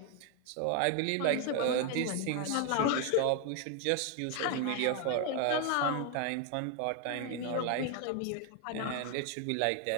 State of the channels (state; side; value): different; both; correlation 0.01